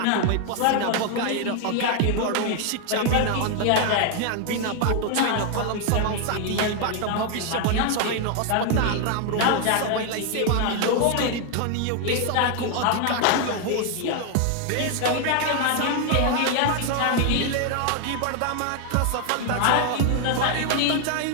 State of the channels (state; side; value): different; both; correlation 0.00